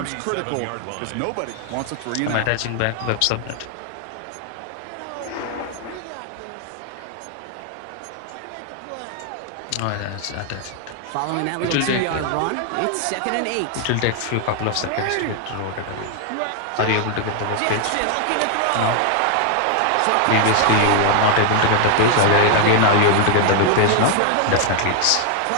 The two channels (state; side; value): different; both; correlation 0.00